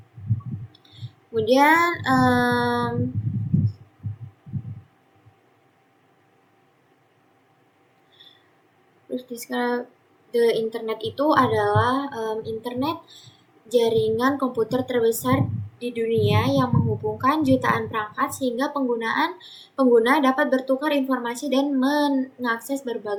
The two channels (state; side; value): identical; both; correlation 1.00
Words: Kemudian the internet itu adalah internet jaringan komputer terbesar di dunia yang menghubungkan jutaan perangkat sehingga pengguna dapat bertukar informasi dan mengakses